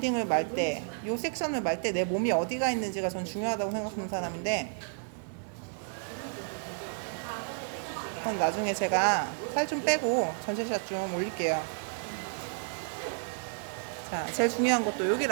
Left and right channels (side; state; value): left; silent; digital silence